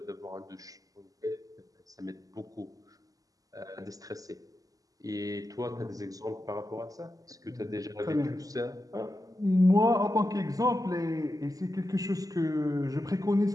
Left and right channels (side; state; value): left; late; 0.17 ms